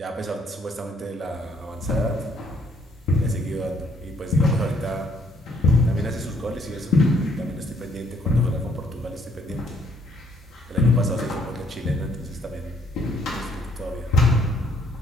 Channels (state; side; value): normal; both; correlation 0.67